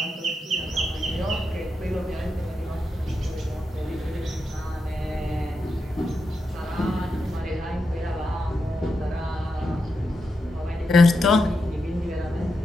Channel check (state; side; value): normal; both; correlation 0.86